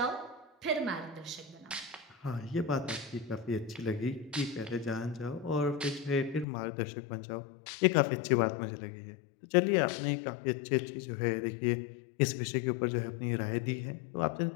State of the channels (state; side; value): drops out; right; at 6.5 s